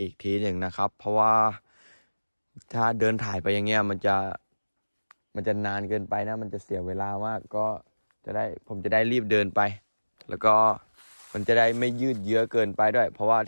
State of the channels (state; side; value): inverted; both; correlation -1.00